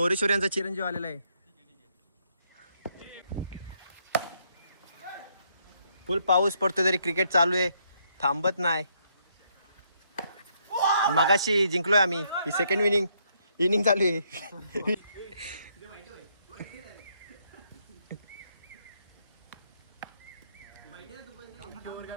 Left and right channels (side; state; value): both; inverted; correlation -0.73